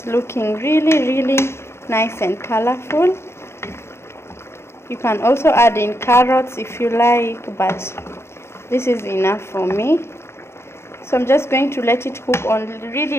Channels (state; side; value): late; right; 0.12 ms